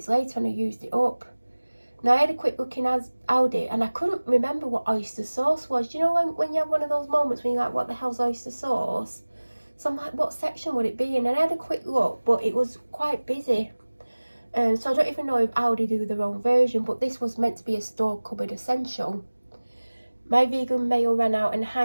later and I used it up. Now I had a quick look in Aldi and I couldn't remember what oyster sauce was. Do you know when you have one of those moments when you're like, what the hell's oyster sauce? So I'm like, what section would it be in? And I had a quick look, but it was quite busy. So I don't even know if Aldi do their own version, but this was meant to be a store cupboard essential. My vegan mayo ran out and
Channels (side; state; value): both; inverted; correlation -1.00